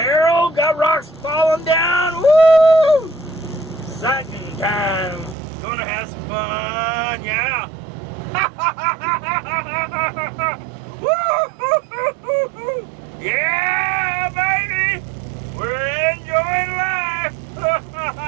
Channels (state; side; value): drops out; left; at 5.4 s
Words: got rocks falling down. Woo! Exciting time. Gonna have some fun, yeah. Woo! Yeah, baby! We're enjoying life!